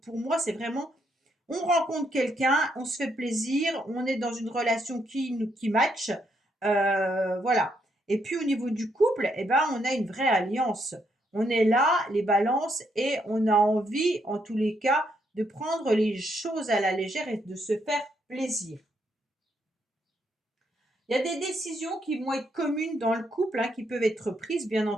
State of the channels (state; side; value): normal; both; correlation 0.76